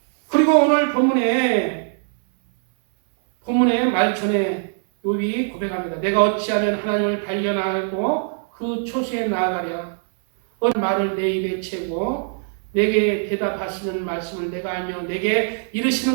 그리고 오늘 본문의 말전에 욥이 고백합니다. 내가 어찌하면 하나님을 발견하고 그 초소에 나아가랴. 어떤 말을 내 입에 채고 내게 대답하시는 말씀을 내가 알며 내게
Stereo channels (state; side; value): silent; left; digital silence